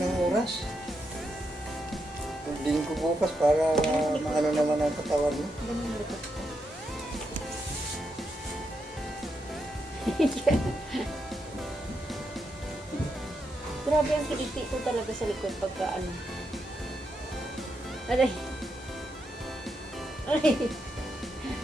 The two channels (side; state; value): both; normal; correlation 0.83